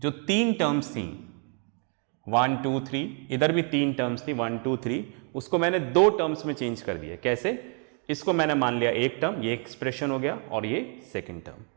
3 टर्म्स थी 1 2 3, इधर भी 3 टर्म्स थी 1 2 3, उसको मैंने 2 टर्म्स में चेंज कर दिया। कैसे? इसको मैंने मान लिया एक टर्म, ये एक्सप्रेशन हो गया, और ये सेकंड टर्म।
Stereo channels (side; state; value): left; quieter; 39.9 dB